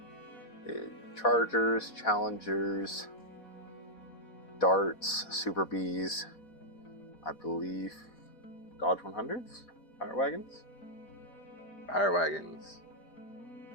Chargers, Challengers, Darts, Super Bees, I believe Dodge 100s, Fire Wagons.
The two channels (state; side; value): late; right; 4.1 ms